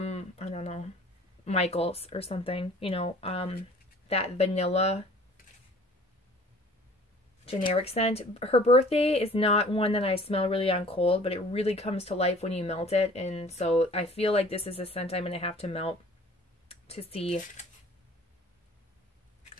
I don't know, Michael's or something, you know, that vanilla generic scent. Her birthday is not one that I smell really on cold, but it really comes to life when you melt it. And so I feel like this is a scent I'm going to have to melt to see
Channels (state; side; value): normal; both; correlation 0.50